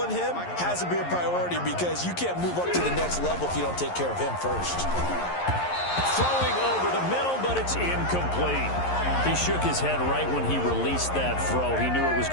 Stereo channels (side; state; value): right; late; 11 ms